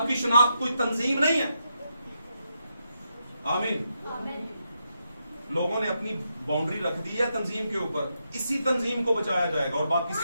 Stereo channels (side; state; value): both; inverted; correlation -0.83